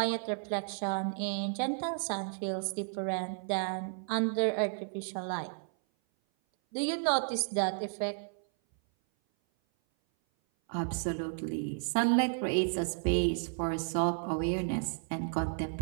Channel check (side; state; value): left; silent; 56 dB below the other